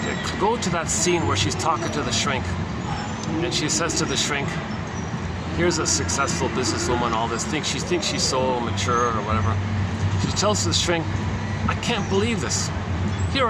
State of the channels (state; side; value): identical; both; correlation 1.00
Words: Go to that scene where she's talking to the shrink, and she says to the shrink, here's a successful businesswoman, all this, she thinks she's so mature or whatever. She tells the shrink, I can't believe this. Here